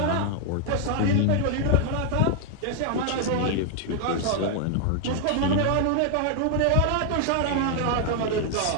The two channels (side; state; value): both; different; correlation 0.00